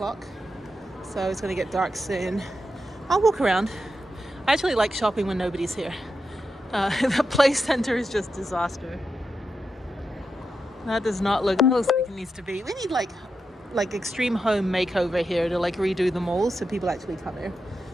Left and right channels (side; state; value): both; normal; correlation 0.87